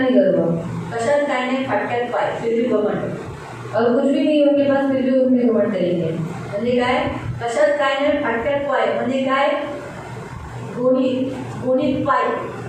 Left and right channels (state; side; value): identical; both; correlation 1.00